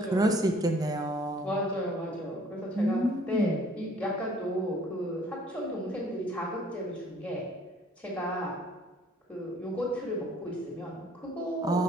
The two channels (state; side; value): normal; both; correlation 0.57